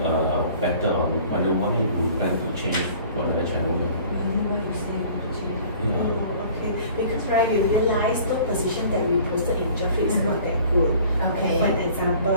better on why you plan to change to another channel? What you say? Yeah. Okay, because right, we realized the position that we posted in job is not that good. Okay. For an example,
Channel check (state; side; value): inverted; both; correlation -0.49